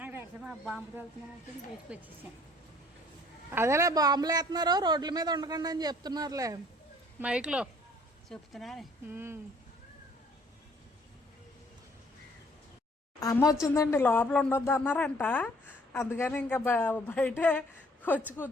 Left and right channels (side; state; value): both; normal; correlation 0.58